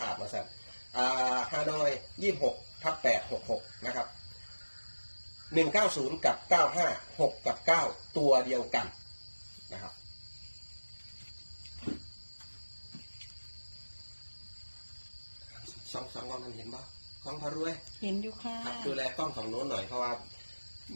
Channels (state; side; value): inverted; both; correlation -1.00